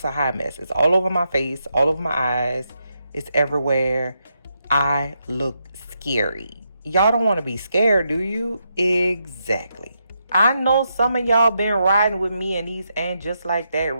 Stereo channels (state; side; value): inverted; both; correlation -0.82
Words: a hot mess. It's all over my face, all over my eyes. It's everywhere. I look scary. Y'all don't want to be scared, do you? Exactly. I know some of y'all been riding with me in these And Just Like That